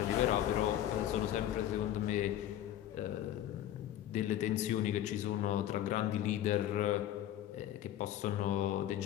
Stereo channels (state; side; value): quieter; right; 12.1 dB